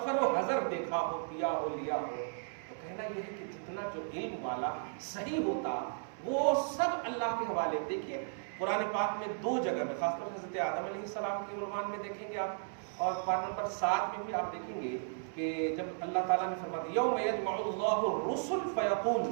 و حضر دیکھا ہو, کیا ہو, لیا ہو. تو کہنا یہ ہے کہ جتنا جو علم والا صحیح ہوتا وہ سب اللہ کے حوالے. دیکھیے قرآن پاک میں 2 جگہ میں, خاص طور سے حضرت آدم علیہ السلام کے عنوان میں دیکھیں گے آپ, اور پارٹ نمبر 7 میں بھی آپ دیکھیں گے کہ جب اللہ تعالیٰ نے فرمایا یوم یجمع اللہ الرسل فیقول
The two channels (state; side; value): silent; left; 54 dB below the other